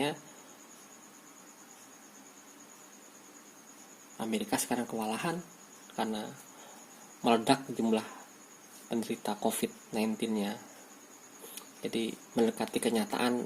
Amerika sekarang kewalahan karena meledak jumlah penderita COVID-19-nya. Jadi mendekati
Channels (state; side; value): identical; both; correlation 1.00